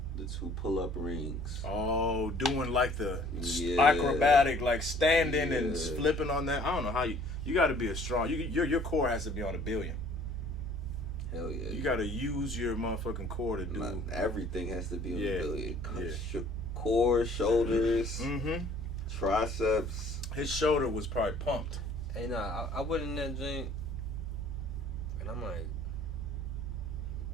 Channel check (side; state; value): both; normal; correlation 0.54